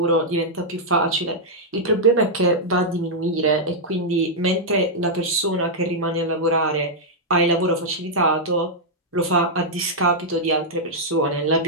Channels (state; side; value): normal; both; correlation -0.06